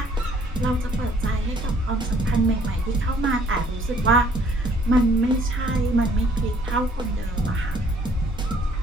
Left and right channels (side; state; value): both; normal; correlation 0.61